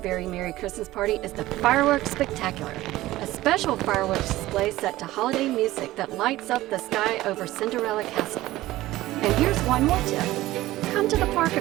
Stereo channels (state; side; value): quieter; left; 16.7 dB